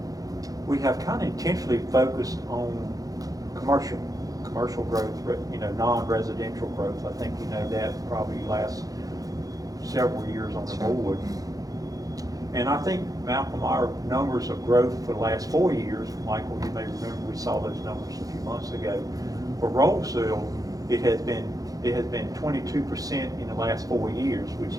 We have kind of intentionally focused on commercial growth, non-residential growth. I think that probably lasts several years on the board. And I think, Malcolm, our numbers of growth for the last 4 years, Michael, you may remember we saw those numbers a few months ago. For Roseville, it has been 22% in the last 4 years, which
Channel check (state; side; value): late; left; 0.17 ms